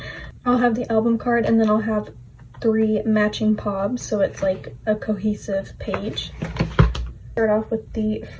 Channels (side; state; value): both; identical; correlation 1.00